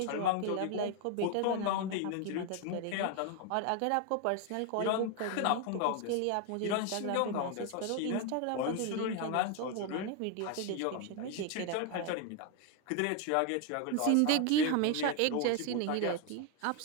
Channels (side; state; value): both; different; correlation 0.01